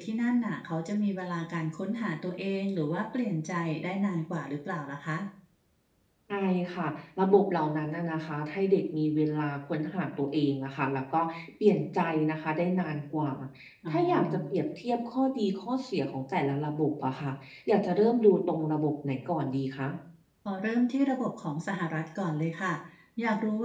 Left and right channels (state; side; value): identical; both; correlation 1.00